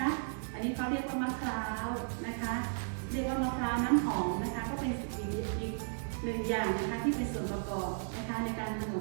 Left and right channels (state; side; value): silent; left; digital silence